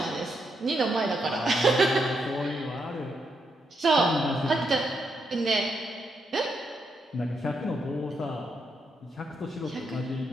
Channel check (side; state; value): both; normal; correlation 0.80